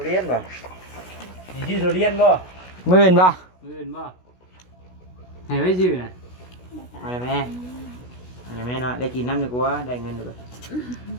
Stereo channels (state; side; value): late; right; 16 ms